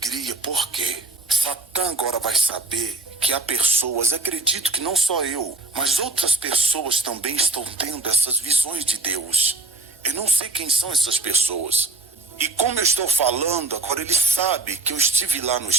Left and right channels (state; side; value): quieter; left; 3.2 dB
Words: Por quê? Satã agora vai saber que há pessoas, acredito que não só eu, mas outras pessoas também estão tendo essas visões de Deus. Eu não sei quem são essas pessoas. E como eu estou falando, agora ele sabe que eu estive lá no